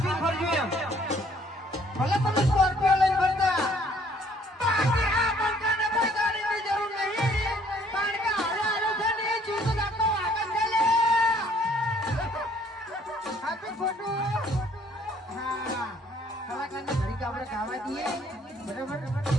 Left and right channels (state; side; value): normal; both; correlation 0.61